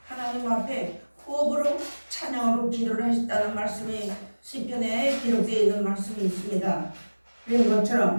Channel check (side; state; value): both; inverted; correlation -1.00